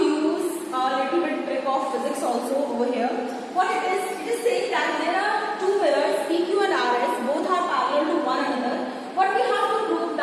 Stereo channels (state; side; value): identical; both; correlation 1.00